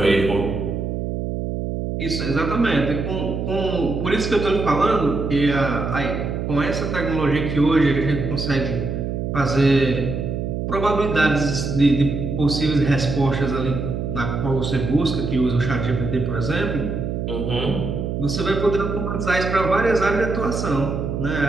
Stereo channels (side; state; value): right; noise; hum, 3 dB below the sound